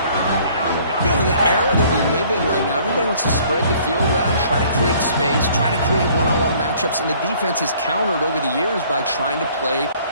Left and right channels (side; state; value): both; inverted; correlation -0.57